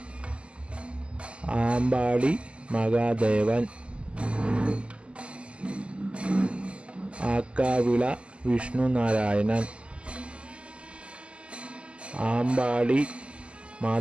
ആമ്പാടി മഹാദേവൻ, ആക്കാവിള വിഷ്ണുനാരായണൻ, ആമ്പാടി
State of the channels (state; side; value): late; left; 0.054 ms